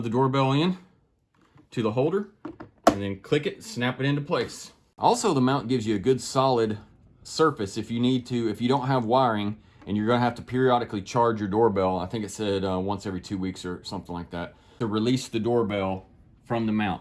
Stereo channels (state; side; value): identical; both; correlation 1.00